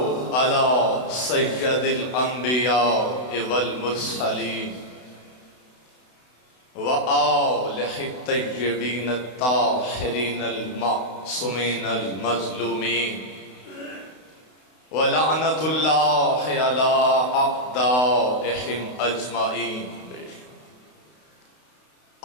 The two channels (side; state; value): right; late; 32 ms